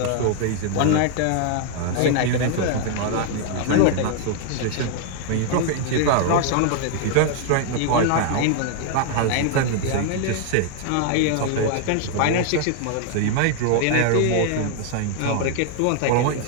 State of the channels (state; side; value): different; both; correlation 0.00